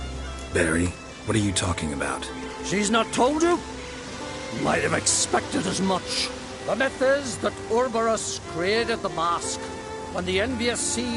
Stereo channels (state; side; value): identical; both; correlation 1.00